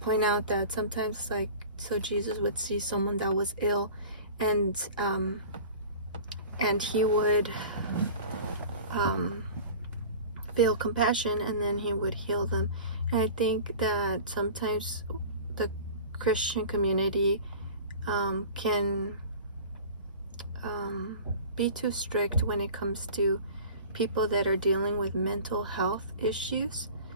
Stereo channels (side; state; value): both; inverted; correlation -0.40